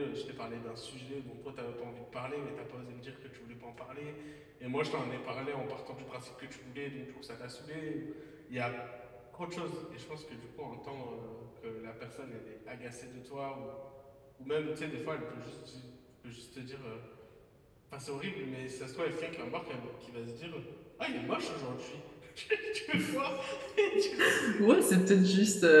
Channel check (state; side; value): identical; both; correlation 1.00